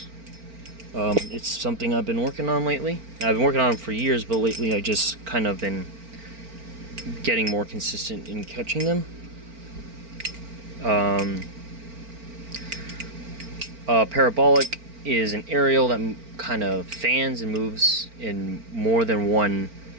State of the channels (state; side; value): late; left; 4.4 ms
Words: It's something I've been working on lately. I've been working on them for years, but lately I just kind of been getting more consistent in catching them. Parabolic is an aerial that kind of fans and moves in more than one